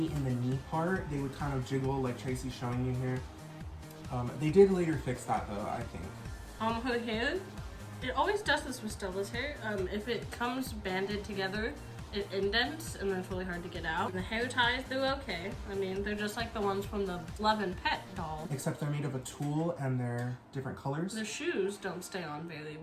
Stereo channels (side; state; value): both; identical; correlation 1.00